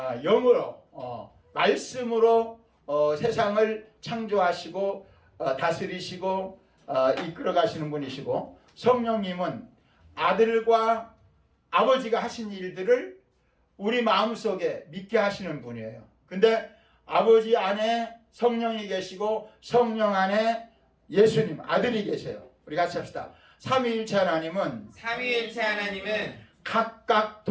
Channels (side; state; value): both; identical; correlation 1.00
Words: 영으로 말씀으로 세상을 창조하시고 다스리시고 이끌어 가시는 분이시고 성령님은 아들과 아버지가 하신 일들을 우리 마음속에 믿게 하시는 분이에요. 근데 아버지 안에 성령이 계시고 성령 안에 예수님 아들이 계세요. 우리 같이 합시다. 삼위일체 하나님은 각각